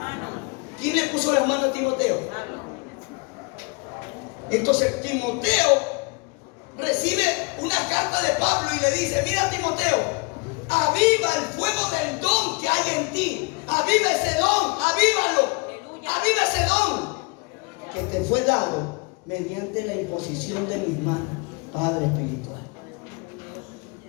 ¿Quién le puso las manos a Timoteo? Entonces Timoteo recibe una carta de Pablo y le dice, mira Timoteo, aviva el fuego del don que hay en ti. Aviva ese don, avívalo. Aviva ese don que te fue dado mediante la imposición de mis manos, Padre espiritual.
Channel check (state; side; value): quieter; right; 30.7 dB